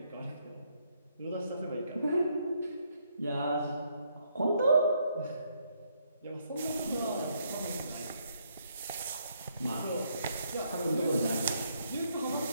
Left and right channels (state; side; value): inverted; both; correlation -0.72